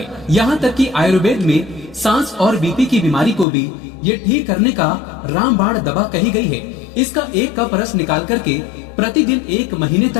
यहाँ तक कि आयुर्वेद में सांस और बीपी की बीमारी को भी ये ठीक करने का रामबाण दवा कही गई है। इसका 1 कप रस निकाल करके प्रतिदिन 1 महीने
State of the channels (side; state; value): right; drops out; at 3.5 s